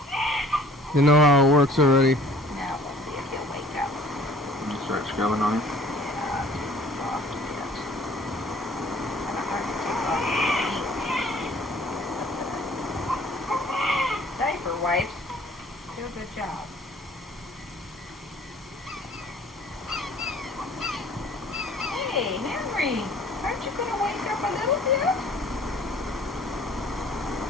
They know how it works already. Now we'll see if he'll wake up. You start scrubbing on him. Yeah, it's soft a bit. Kind of hard to take off the ink. Diaper wipes do a good job. Hey, Henry, aren't you going to wake up a little bit?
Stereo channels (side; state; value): both; normal; correlation 0.53